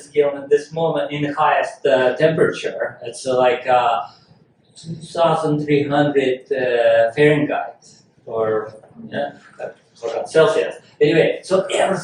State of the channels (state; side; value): identical; both; correlation 1.00